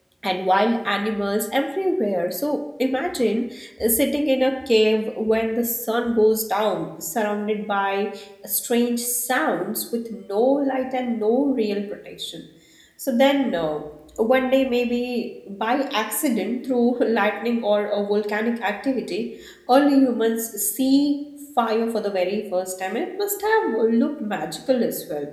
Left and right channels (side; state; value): both; identical; correlation 1.00